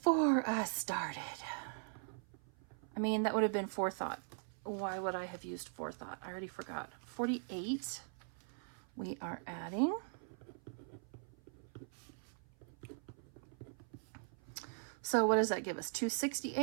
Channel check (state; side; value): silent; left; 51 dB below the other